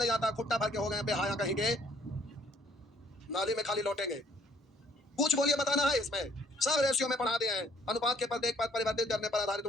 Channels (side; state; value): both; normal; correlation 0.62